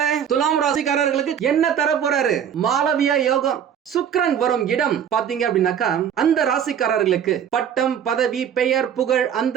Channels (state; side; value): quieter; left; 8.8 dB